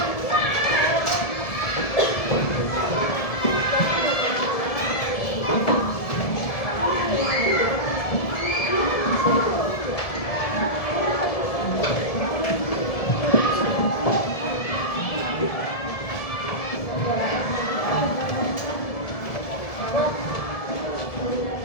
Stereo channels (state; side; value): late; right; 1.7 ms